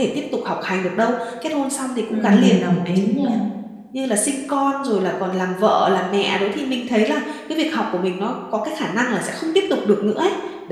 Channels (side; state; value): both; identical; correlation 1.00